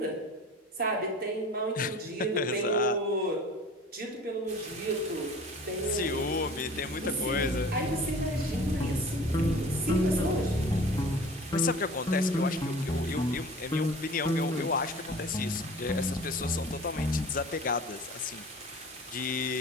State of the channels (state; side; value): normal; both; correlation 0.43